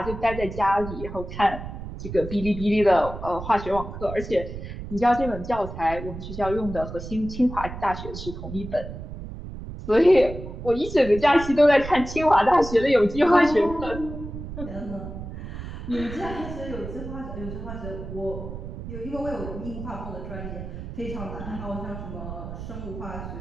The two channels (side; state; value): right; noise; rumble, 9 dB below the sound